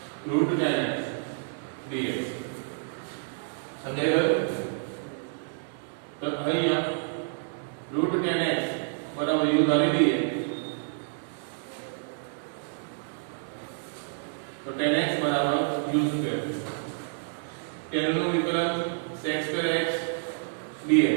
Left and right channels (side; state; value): left; silent; digital silence